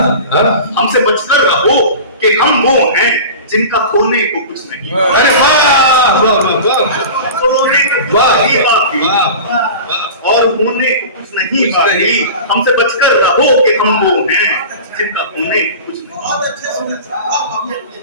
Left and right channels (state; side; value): inverted; both; correlation -0.34